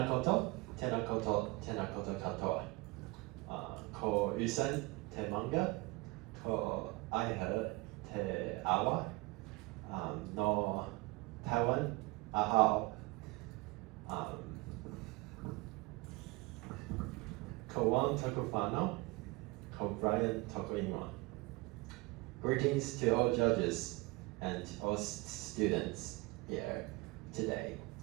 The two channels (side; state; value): left; quieter; 23.3 dB